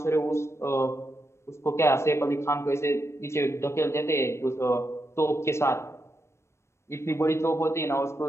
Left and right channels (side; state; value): right; late; 0.13 ms